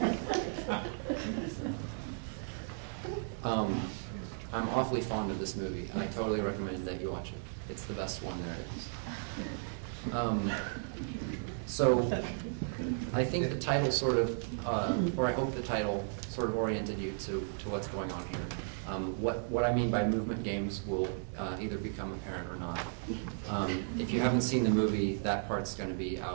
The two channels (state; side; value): silent; left; 54 dB below the other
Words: I'm awfully fond of this movie. I totally recommend that you watch it. It's the best one there is. So I think the title sort of, or I hope the title sort of oriented you to what's going on here. What I mean by movement games will either become apparent or not. If you haven't seen the movie, that part's going to be